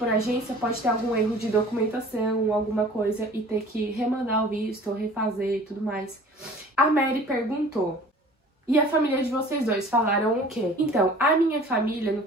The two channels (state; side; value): normal; both; correlation 0.46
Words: agência, pode ter algum erro de documentação, alguma coisa, e ter que remandar o visto, ou refazer e tudo mais. A Mary perguntou, e a família de vocês dois falaram o quê? Então, a minha família, no